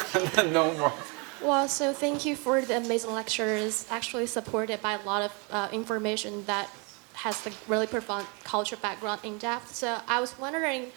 And then no more. Well, so thank you for the amazing lecture. It's actually supported by a lot of information that has the really profound cultural background in depth. So I was wondering,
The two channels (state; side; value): quieter; left; 32.3 dB